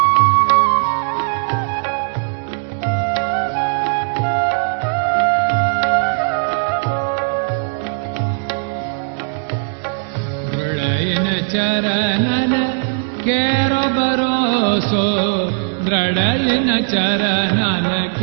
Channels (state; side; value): silent; left; digital silence